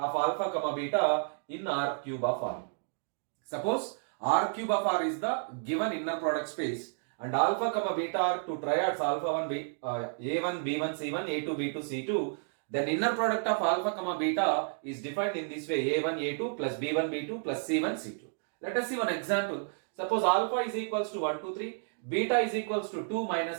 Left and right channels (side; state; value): left; silent; digital silence